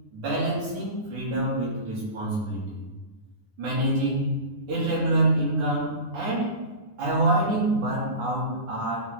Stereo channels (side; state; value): left; late; 9.7 ms